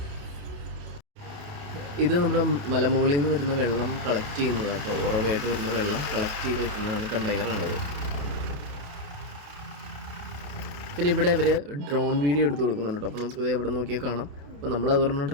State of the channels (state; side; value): late; left; 28 ms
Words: ഇത് നമ്മുടെ മലമുകളിൽ നിന്ന് വരുന്ന വെള്ളം കളക്ട് ചെയ്യുന്നതാണ് കേട്ടോ. ഉറവായിട്ട് വരുന്ന വെള്ളം കളക്ട് ചെയ്ത് വെക്കുന്നതാണ് കണ്ടെയ്നറാണത്. പിന്നെ ഇവിടെ അവർ ഡ്രോൺ വീഡിയോ എടുത്ത് കൊടുക്കുന്നുണ്ട് കേട്ടോ. അപ്പോൾ നമുക്കിത് എവിടെ നോക്കിയാൽ കാണാം. അപ്പോൾ നമ്മളതൊരെണ്ണം